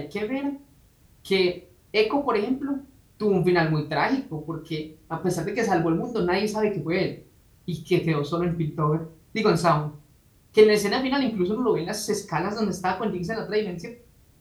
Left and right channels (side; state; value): both; identical; correlation 1.00